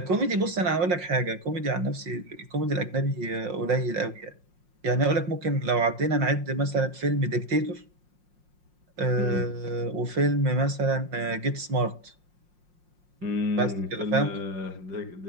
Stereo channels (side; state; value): left; late; 5.6 ms